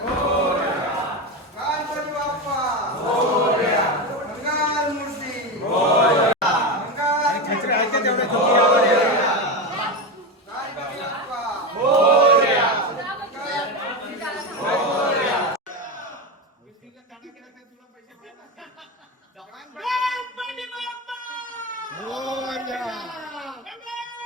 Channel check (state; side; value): normal; both; correlation 0.16